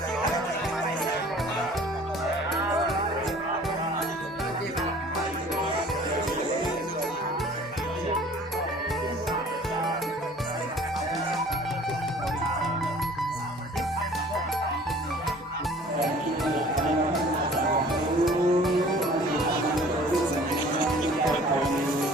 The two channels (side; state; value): both; normal; correlation 0.50